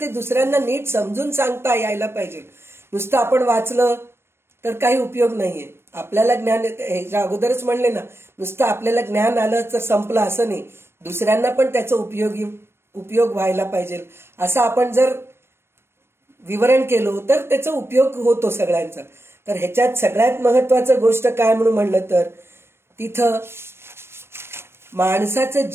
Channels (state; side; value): late; left; 0.12 ms